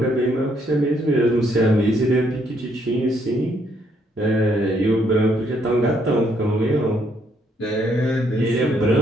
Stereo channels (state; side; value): normal; both; correlation 0.71